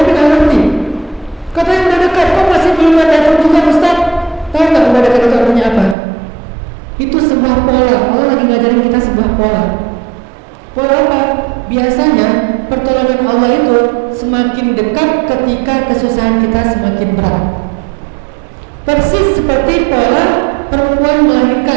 nggak ngerti. Katanya udah dekat, kok masih belum datang juga Ustaz? Tahu nggak udah dekat itu artinya apa? Itu sebuah pola. Allah lagi ngajarin kita sebuah pola. Pola apa? Biasanya pertolongan Allah itu semakin dekat ketika kesusahan kita semakin berat. Persis seperti pola perempuan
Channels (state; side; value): drops out; left; at 6.0 s